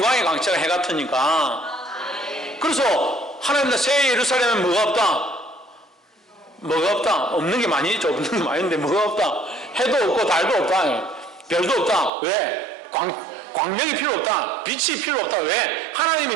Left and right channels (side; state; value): left; drops out; at 12.1 s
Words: 광채가 해 같으니까. 그래서 하나님 새 예루살렘은 뭐가 없다? 뭐가 없다? 없는 게 많이 있죠. 없는 게 많이 있는데 뭐가 없다? 해도 없고 달도 없다. 별도 없다. 왜? 광명이 필요 없다. 빛이 필요 없다. 왜?